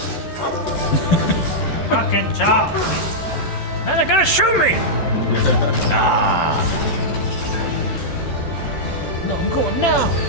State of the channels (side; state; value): right; late; 14 ms